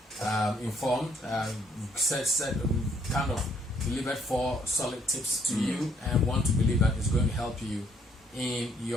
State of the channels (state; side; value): normal; both; correlation 0.67